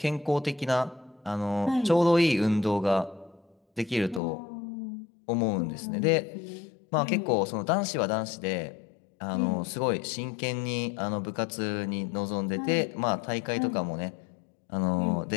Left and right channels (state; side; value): drops out; right; at 4.2 s